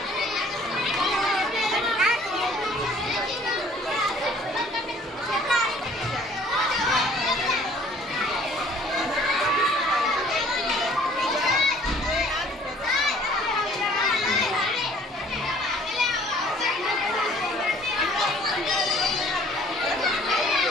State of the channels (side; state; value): both; normal; correlation 0.55